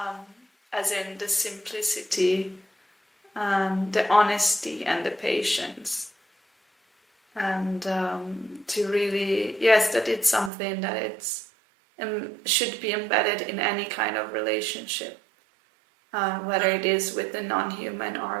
as in the simplicity, the honesty, and the patience. And to really, yes, that it's something that it's should be embedded in any kind of relationship, whether it is with the non-human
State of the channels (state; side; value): drops out; left; at 10.5 s